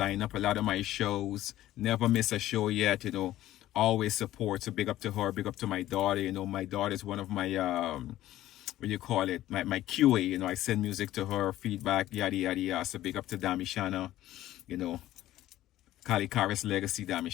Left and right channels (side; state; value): right; quieter; 14.3 dB